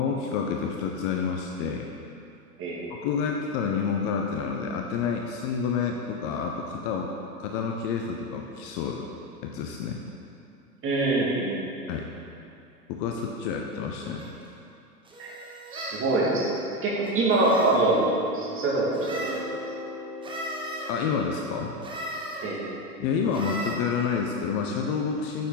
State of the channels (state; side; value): normal; both; correlation 0.12